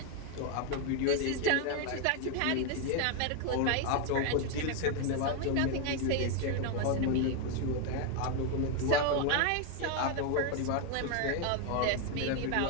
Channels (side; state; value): both; different; correlation 0.01